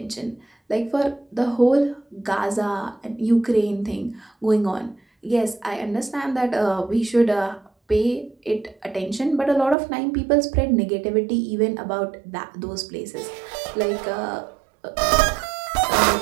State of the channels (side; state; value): left; drops out; at 9.8 s